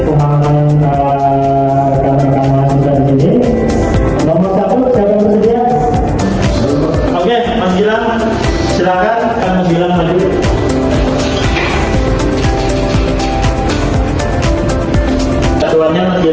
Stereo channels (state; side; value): identical; both; correlation 1.00